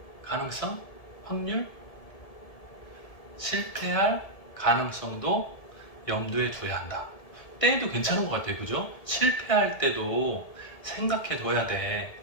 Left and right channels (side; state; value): right; late; 1.7 ms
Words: 가능성, 확률, 실패할 가능성도 염두에 둬야 한다. 때도 괜찮은 것 같아요, 그죠? 실패할 때도 생각해 둬야 돼.